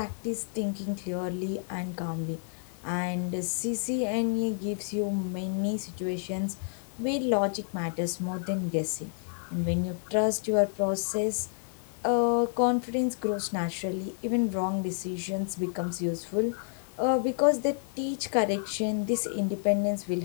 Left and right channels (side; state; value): right; silent; 58 dB below the other